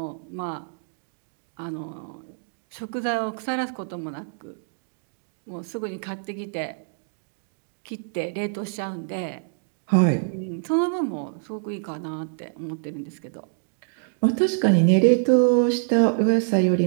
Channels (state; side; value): silent; left; digital silence